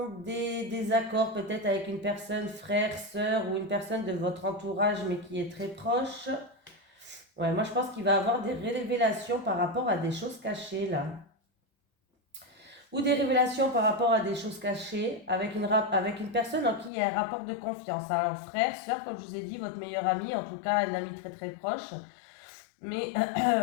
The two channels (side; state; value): right; drops out; at 16.9 s